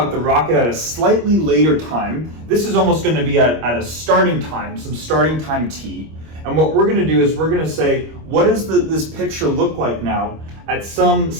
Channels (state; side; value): late; left; 25 ms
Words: the rocket at a slightly later time. This is almost going to be at a starting time, some starting time t. And what we're going to do is we're going to say, what does this picture look like now at some